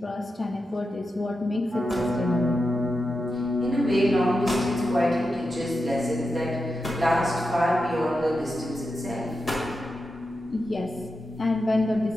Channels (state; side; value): normal; both; correlation 0.89